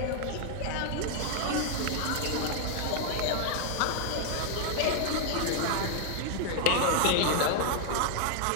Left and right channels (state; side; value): different; both; correlation 0.00